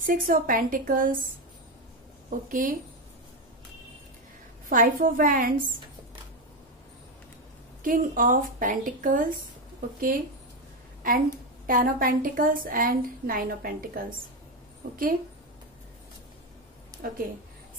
of pentacles. Okay, five of wands, king of pentacles. Okay, and ten of pentacles and nine of pentacles. Okay okay,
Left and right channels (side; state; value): both; normal; correlation 0.11